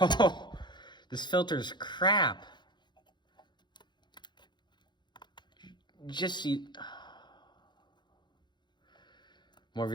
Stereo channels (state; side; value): late; right; 0.22 ms